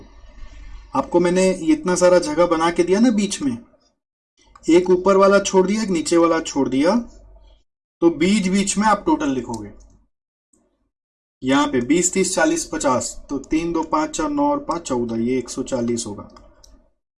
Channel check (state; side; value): identical; both; correlation 1.00